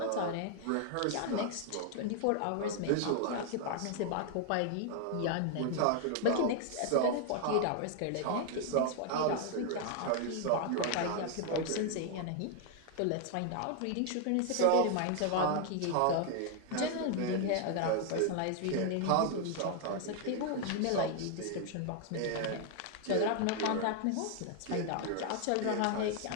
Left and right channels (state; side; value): different; both; correlation 0.00